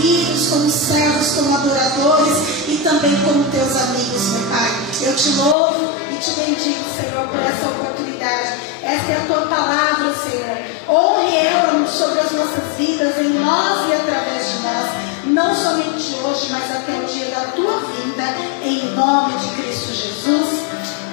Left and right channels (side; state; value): right; drops out; at 5.6 s